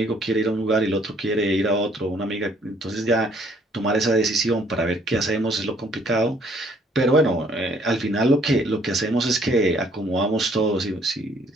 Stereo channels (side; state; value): both; normal; correlation 0.63